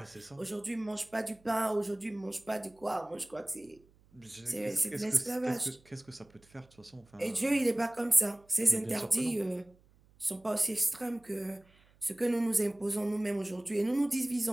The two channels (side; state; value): right; noise; hum, 30 dB below the sound